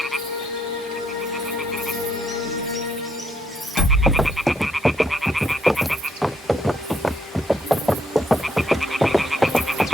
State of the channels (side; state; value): both; normal; correlation 0.73